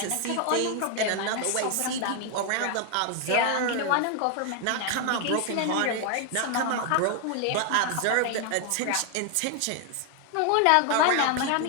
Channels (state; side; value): different; both; correlation 0.00